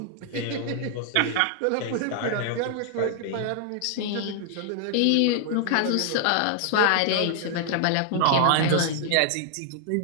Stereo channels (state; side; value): different; both; correlation 0.00